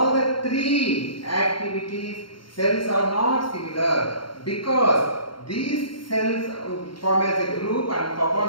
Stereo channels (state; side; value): late; right; 0.73 ms